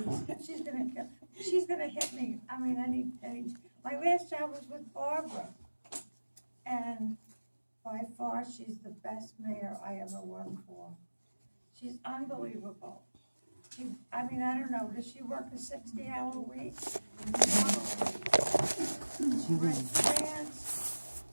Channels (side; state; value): both; inverted; correlation -1.00